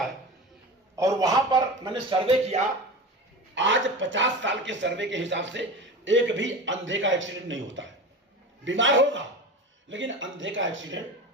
और वहां पर मैंने सर्वे किया, आज 50 साल के सर्वे के हिसाब से एक भी अंधे का एक्सीडेंट नहीं होता है। बीमार होगा लेकिन अंधे का एक्सीडेंट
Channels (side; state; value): both; normal; correlation 0.30